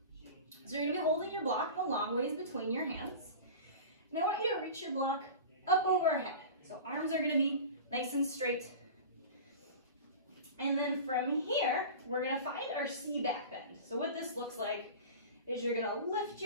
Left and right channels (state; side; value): inverted; both; correlation -0.34